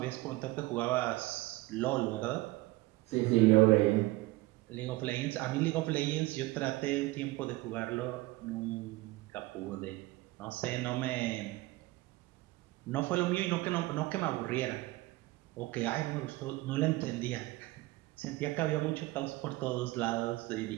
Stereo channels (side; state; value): left; quieter; 19.8 dB